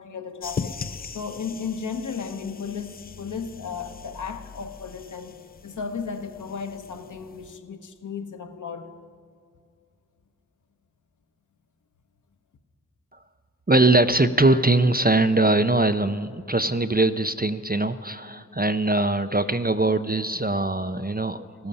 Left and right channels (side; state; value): both; normal; correlation 0.45